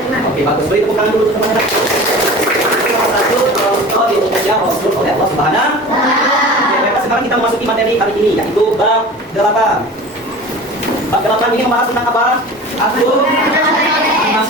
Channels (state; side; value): normal; both; correlation 0.37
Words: beriman. Oke, bagus. Beri tepuk tangan dulu teman-teman. Salah satu contoh diutusnya Rasul oleh Allah Subhanahu. Oke, baik. Sekarang kita memasuki materi hari ini, yaitu bab 8. Bab 8 ini membahas tentang apa? Akhlak anak